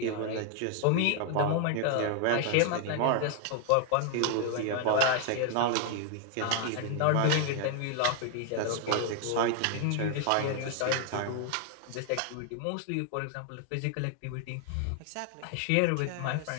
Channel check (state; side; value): different; both; correlation 0.00